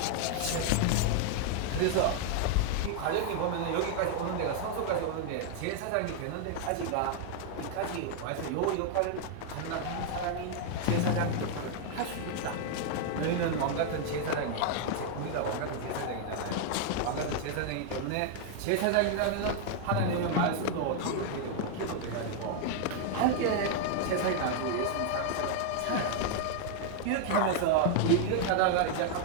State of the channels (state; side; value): different; both; correlation 0.00